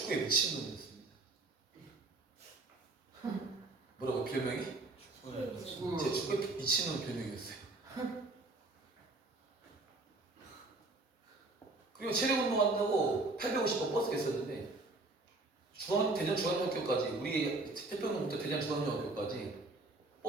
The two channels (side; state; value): left; quieter; 3.2 dB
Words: 미친놈이었습니다. 뭐라고 별명이? 제 축구에 미친놈 별명이었어요. 그리고 체력 운동한다고 850번 버스가 있었는데 대전 중앙중학교까지 우리 태평로부터 대전 중앙중학교까지